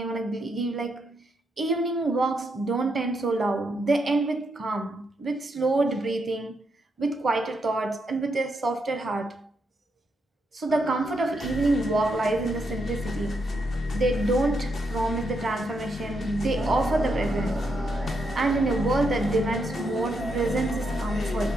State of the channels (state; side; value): normal; both; correlation 0.80